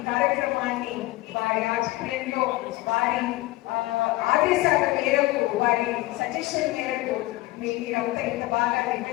కార్యక్రమాన్ని వారి ఆధ్వర్యంలో, వారి ఆదేశాల మేరకు, వారి సజెషన్ మేరకు మీరంతా ఇంత బాగా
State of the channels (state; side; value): quieter; right; 18.8 dB